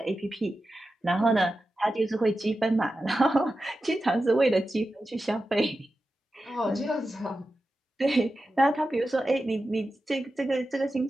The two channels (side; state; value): both; normal; correlation 0.92